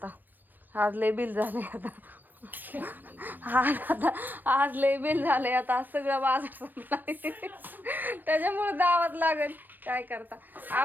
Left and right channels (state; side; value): late; left; 0.091 ms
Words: आज लय बिल झालंय आज लय बिल झालंय आता. आज सगळं बाजार संपलाय, त्याच्यामुळे जावंच लागेल. काय करता.